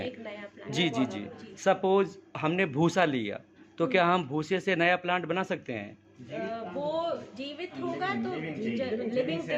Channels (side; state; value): both; identical; correlation 1.00